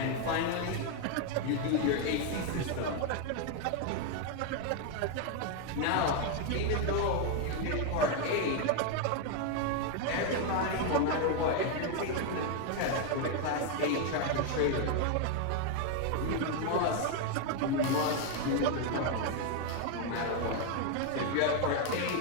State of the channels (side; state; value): both; different; correlation 0.01